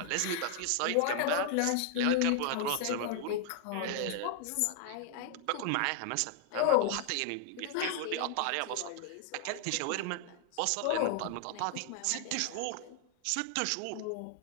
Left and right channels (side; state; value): both; different; correlation 0.00